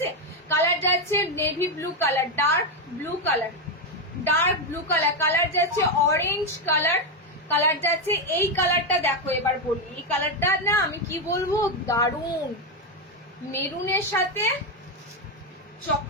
কালার যাচ্ছে navy blue colour, dark blue colour, dark blue colour, colour যাচ্ছে অরেঞ্জ কালার, কালার যাচ্ছে এই কালারটা দেখো। এবার বলি, এই কালারটা না আমি কি বলবো, দারুণ, মেরুনের সাথে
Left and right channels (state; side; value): normal; both; correlation 0.07